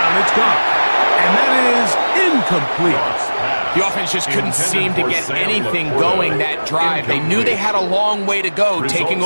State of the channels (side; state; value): both; inverted; correlation -1.00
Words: it's gone. And that is incomplete. The offense just couldn't seem to get anything going that drive. They knew they had a long way to go, taking